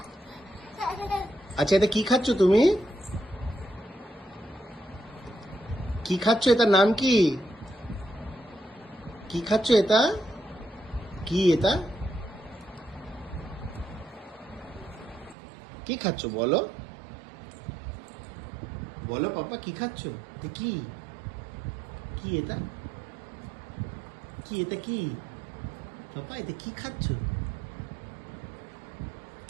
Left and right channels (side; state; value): left; drops out; at 15.4 s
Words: আচ্ছা, এটা কি খাচ্ছ তুমি? কি খাচ্ছ? এটার নাম কি? কি খাচ্ছ এটা? কি এটা? কি খাচ্ছ বলো? বলো পাপা, কি খাচ্ছ? এটা কি? কি এটা? কি এটা কি? পাপা এটা কি খাচ্ছ?